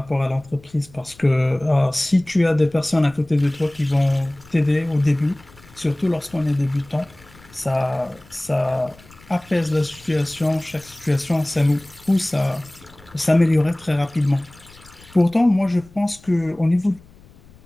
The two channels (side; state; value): left; noise; rumble, 25 dB below the sound